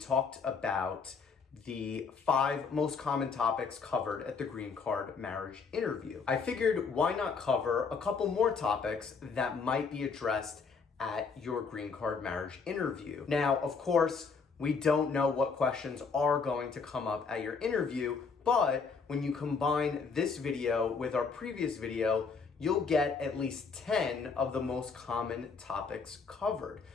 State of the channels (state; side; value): quieter; right; 5.2 dB